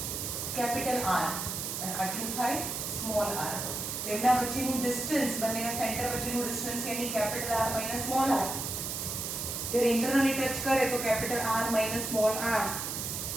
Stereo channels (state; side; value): noise; right; hiss, 4 dB below the sound